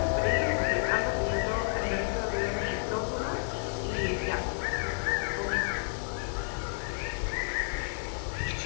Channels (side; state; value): right; silent; digital silence